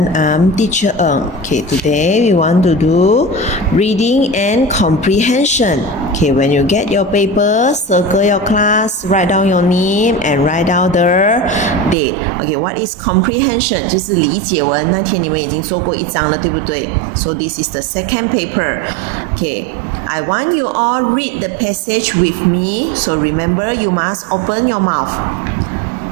I'm teacher Ng. Okay, today we want to do reading and comprehension. Okay, when you get your paper, circle your class, write down your name and write down the date. Okay, what is comprehension? 就是理解文，那天你们已经做过一章了，对不对？ So this is the second paper. Okay, I want you all read the passage with me. So remember, you must open your mouth.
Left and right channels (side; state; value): left; drops out; at 12.0 s